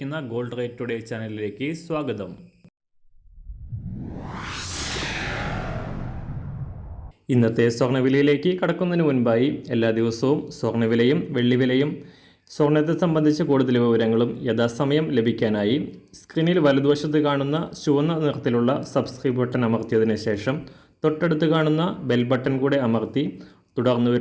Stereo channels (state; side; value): identical; both; correlation 1.00